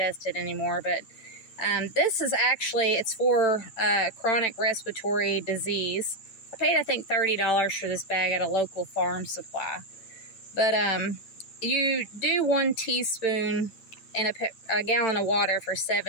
anymore. But this is actually, it's for chronic respiratory disease. I paid, I think, $30 for this bag at a local farm supply. But you do 1 teaspoon in a gallon of water for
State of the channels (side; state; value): right; late; 8.9 ms